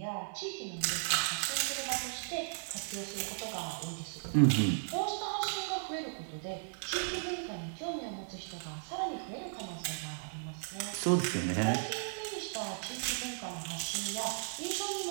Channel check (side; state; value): left; silent; digital silence